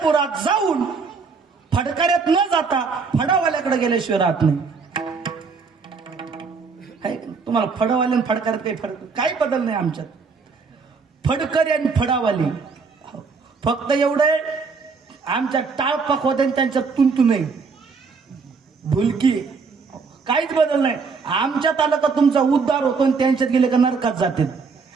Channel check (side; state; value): left; quieter; 5.0 dB